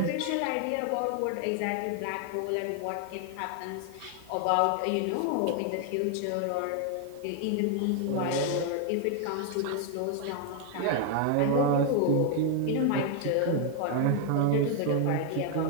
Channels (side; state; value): both; different; correlation 0.00